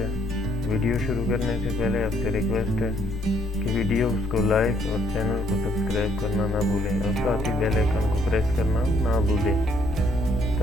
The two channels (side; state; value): both; normal; correlation 0.68